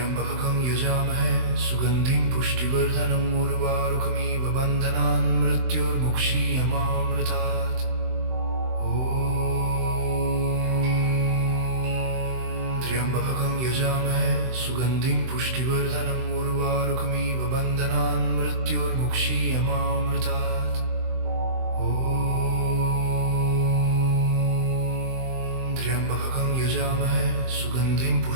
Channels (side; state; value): left; late; 23 ms